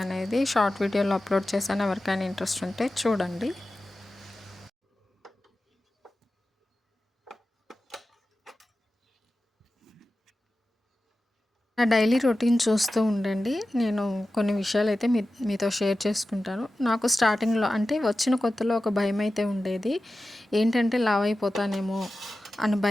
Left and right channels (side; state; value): both; normal; correlation 0.94